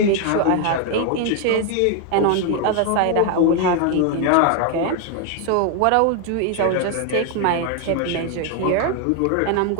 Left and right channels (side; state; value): both; different; correlation 0.00